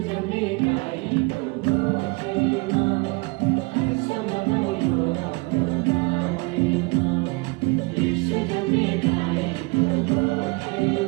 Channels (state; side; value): quieter; left; 27.5 dB